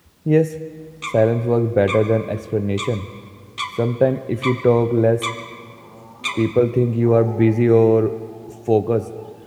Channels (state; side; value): identical; both; correlation 1.00